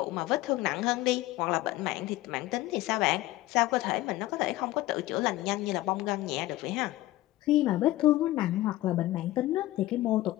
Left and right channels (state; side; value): quieter; right; 16.8 dB